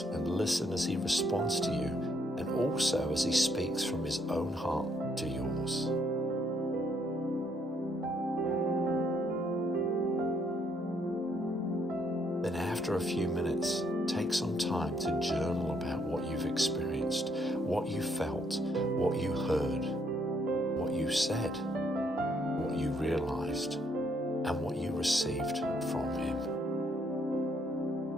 and listen as he responds to you, and also as he speaks from his own heart to yours. Then after a few minutes, take some time to journal about what you've experienced, what you felt, what you heard, what you said, what you realized, and what you received from him.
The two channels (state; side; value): normal; both; correlation 0.70